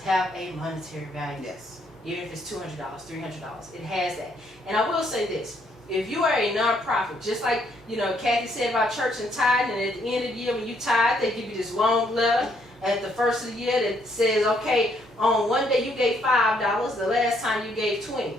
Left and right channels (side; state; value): both; normal; correlation 0.70